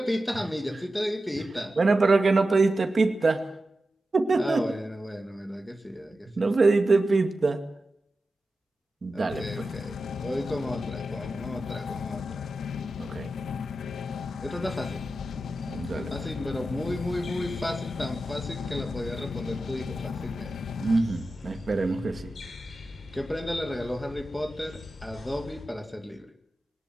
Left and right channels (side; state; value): both; normal; correlation 0.92